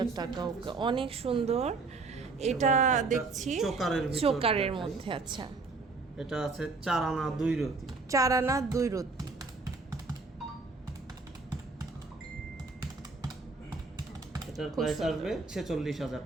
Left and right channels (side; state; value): left; quieter; 4.0 dB